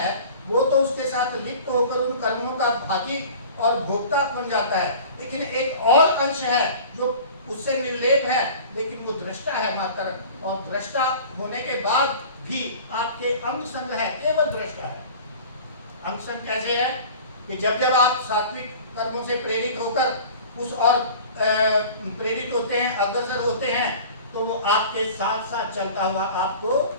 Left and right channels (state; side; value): inverted; both; correlation -0.41